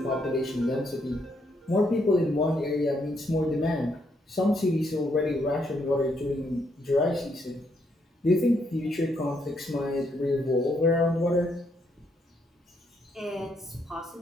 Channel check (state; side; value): normal; both; correlation 0.75